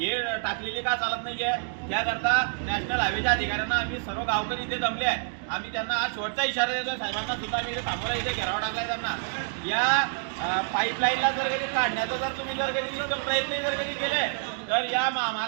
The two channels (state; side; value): silent; left; digital silence